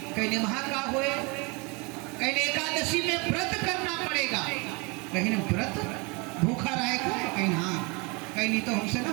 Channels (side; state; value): left; quieter; 28.8 dB